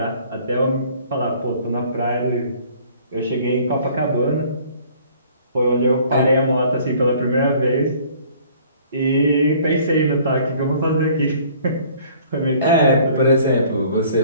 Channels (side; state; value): both; inverted; correlation -0.55